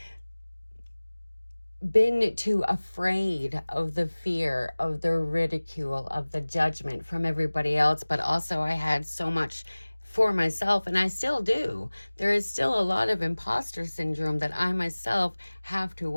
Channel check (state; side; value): inverted; both; correlation -1.00